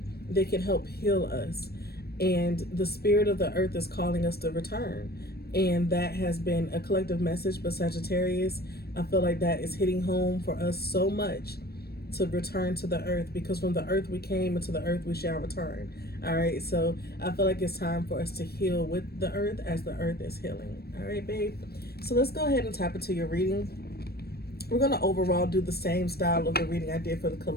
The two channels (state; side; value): late; right; 0.46 ms